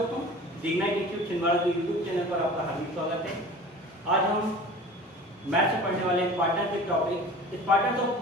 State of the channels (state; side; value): normal; both; correlation 0.41